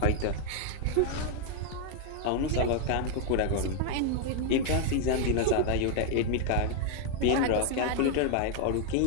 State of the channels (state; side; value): different; both; correlation 0.00